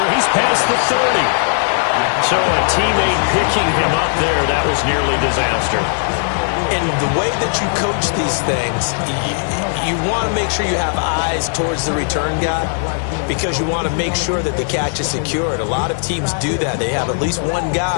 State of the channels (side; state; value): right; silent; digital silence